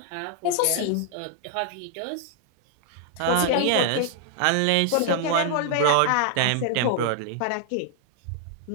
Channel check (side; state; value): both; different; correlation 0.00